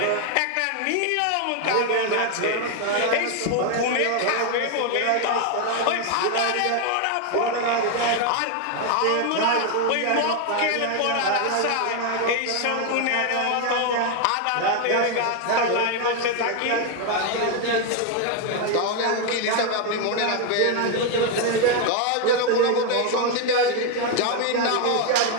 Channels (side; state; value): both; different; correlation 0.01